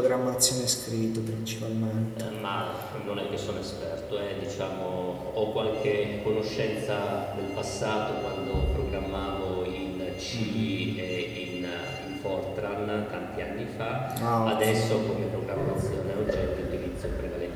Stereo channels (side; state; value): both; identical; correlation 1.00